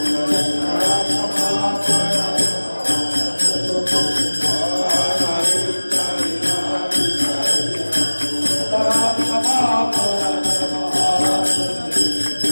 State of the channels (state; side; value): inverted; both; correlation -1.00